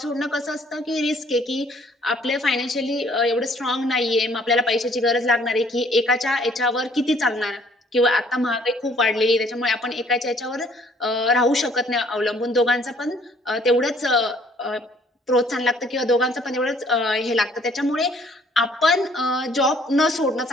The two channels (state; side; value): normal; both; correlation 0.60